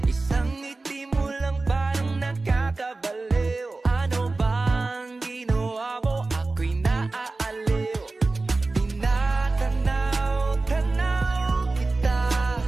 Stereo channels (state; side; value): quieter; left; 3.4 dB